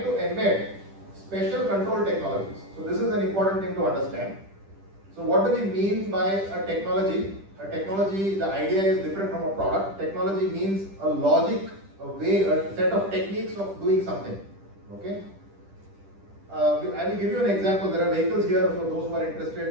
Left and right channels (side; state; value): left; late; 10 ms